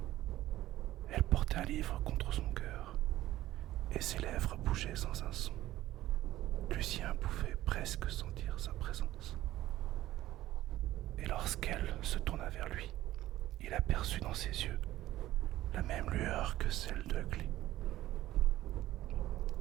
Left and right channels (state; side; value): quieter; left; 15.0 dB